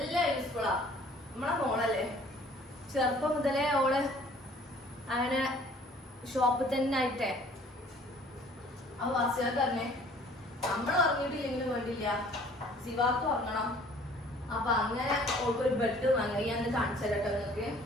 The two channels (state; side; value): normal; both; correlation 0.54